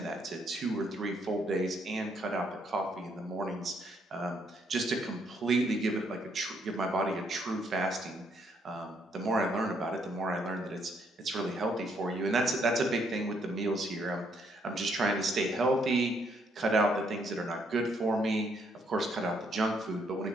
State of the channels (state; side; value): normal; both; correlation 0.71